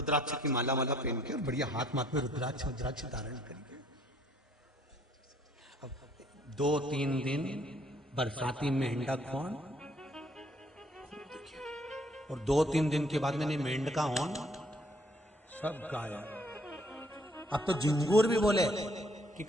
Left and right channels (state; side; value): normal; both; correlation 0.64